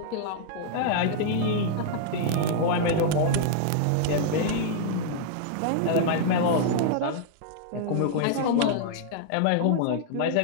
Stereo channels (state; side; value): different; both; correlation -0.01